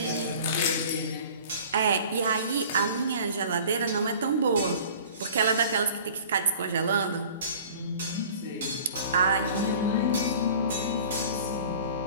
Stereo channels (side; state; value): both; inverted; correlation -0.46